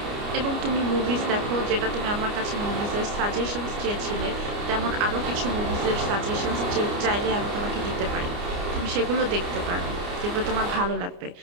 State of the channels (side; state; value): left; late; 29 ms